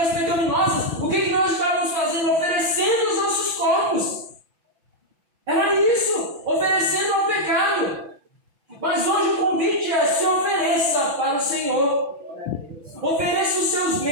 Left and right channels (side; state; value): left; late; 6.0 ms